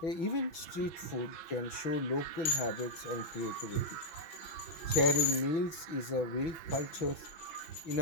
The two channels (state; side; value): late; right; 6.1 ms